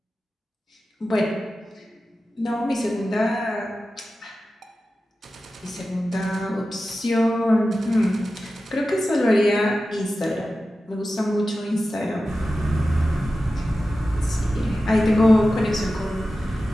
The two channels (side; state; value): both; normal; correlation 0.94